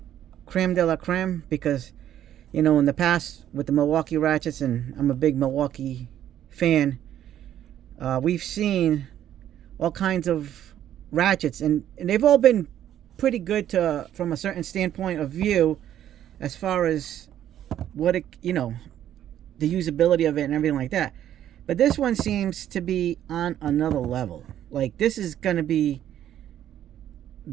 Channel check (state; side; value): quieter; left; 11.2 dB